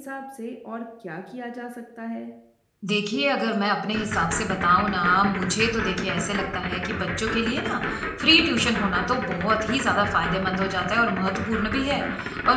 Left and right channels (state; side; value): identical; both; correlation 1.00